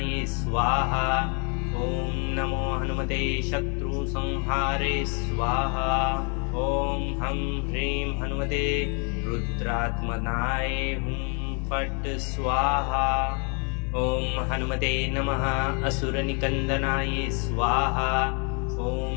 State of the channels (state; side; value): quieter; right; 37.0 dB